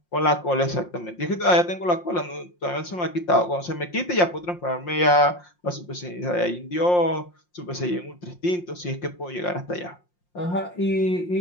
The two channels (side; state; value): right; late; 5.7 ms